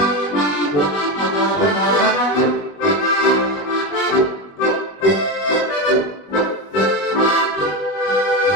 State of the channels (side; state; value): right; late; 21 ms